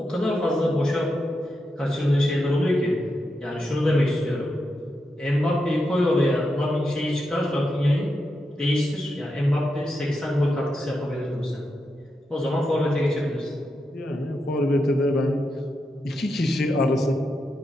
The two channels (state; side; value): normal; both; correlation 0.86